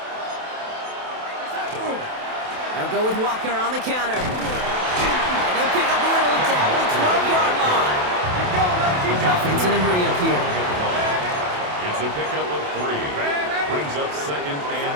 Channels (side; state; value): left; late; 28 ms